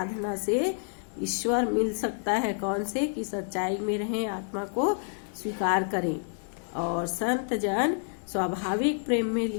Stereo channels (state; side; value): silent; right; digital silence